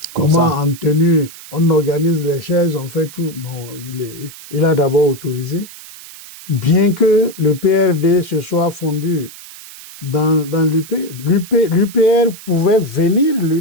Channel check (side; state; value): right; noise; hiss, 17 dB below the sound